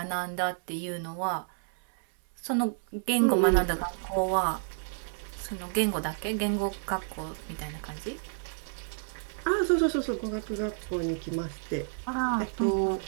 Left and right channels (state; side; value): silent; left; 58 dB below the other